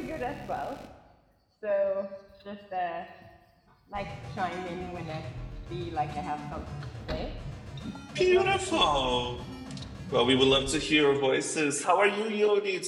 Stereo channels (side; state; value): both; identical; correlation 1.00